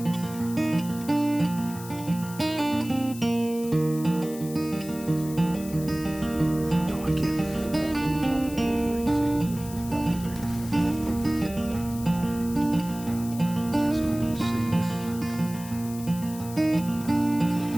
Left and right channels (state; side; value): noise; left; hiss, 15 dB below the sound